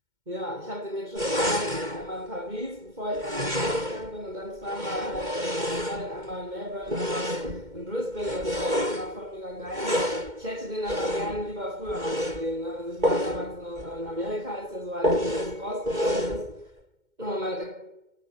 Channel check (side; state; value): left; late; 2.1 ms